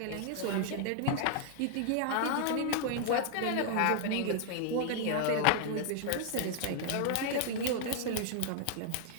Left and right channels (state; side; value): different; both; correlation 0.00